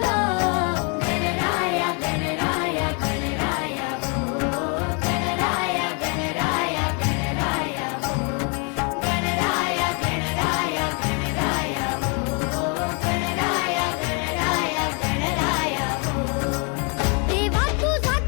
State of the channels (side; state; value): right; quieter; 35.0 dB